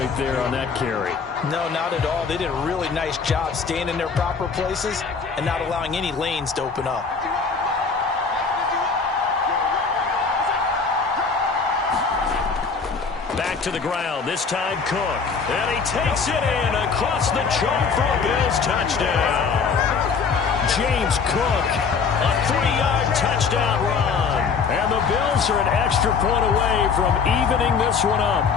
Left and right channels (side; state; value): right; quieter; 5.4 dB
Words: there on that carry. No, not at all. They did a really nice job staying in their proper places and not allowing any lanes to open up. to the ground. This time Cook. And he takes it in across the chalk for a Bills touchdown. James Cook, a 3-yard touchdown run. And the Bills are an extra point away from evening this one up.